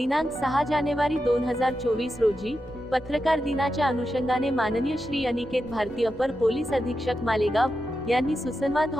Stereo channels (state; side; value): normal; both; correlation 0.88